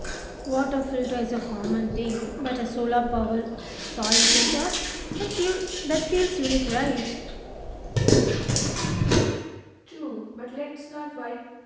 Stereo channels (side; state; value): both; identical; correlation 1.00